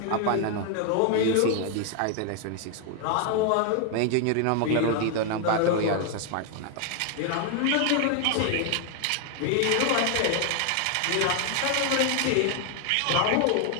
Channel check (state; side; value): different; both; correlation 0.00